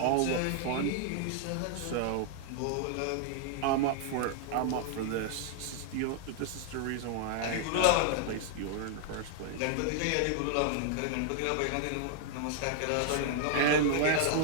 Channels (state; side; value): different; both; correlation -0.01